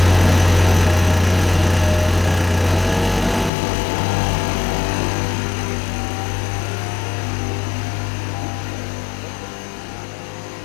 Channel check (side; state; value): right; drops out; at 3.5 s